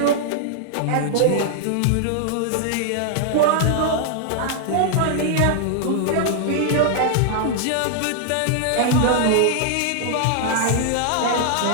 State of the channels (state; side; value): different; both; correlation -0.01